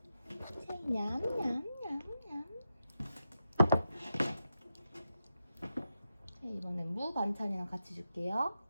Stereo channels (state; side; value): inverted; both; correlation -0.88